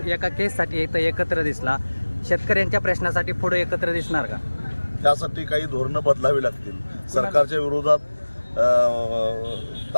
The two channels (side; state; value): both; inverted; correlation -1.00